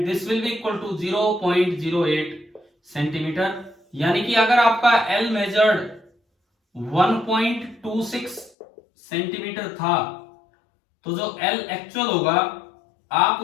this will be equal to 0.08 centimetre. यानी कि अगर आपका L मेजर्ड 1.26 सेंटीमीटर था, तो जो L एक्चुअल होगा आप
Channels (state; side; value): drops out; right; at 8.5 s